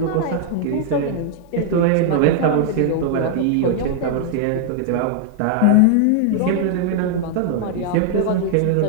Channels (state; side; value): different; both; correlation 0.00